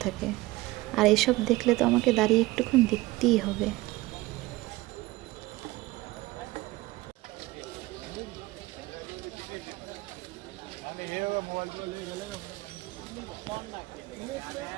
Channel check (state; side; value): quieter; left; 19.8 dB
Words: থাকে। আর এসব দেখলে তো আমাকে দাঁড়িয়ে একটুক্ষণ দেখতেই হবে।